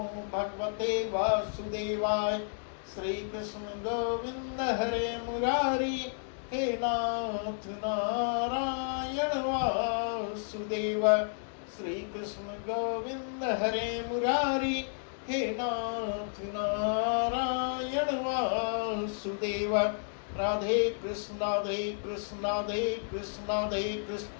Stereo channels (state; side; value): silent; right; digital silence